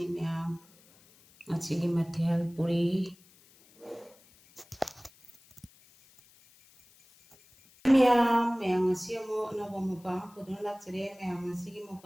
ꯃꯌꯥꯝ ꯉꯁꯤꯒꯤ ꯃꯊꯦꯜ ꯄꯨꯔꯤ ꯃꯌꯥꯝ ꯉꯁꯤ ꯑꯃꯨꯛ ꯑꯅꯧꯕ ꯃꯨꯛꯕꯥꯡ ꯄꯨꯗꯨꯅ ꯂꯥꯛꯆꯔꯦ ꯃꯌꯥꯝ ꯉꯁꯤꯒꯤ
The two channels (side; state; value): left; noise; hiss, 28 dB below the sound